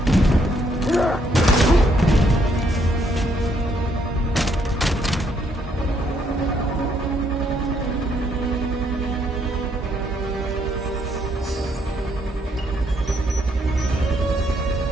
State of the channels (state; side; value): normal; both; correlation 0.72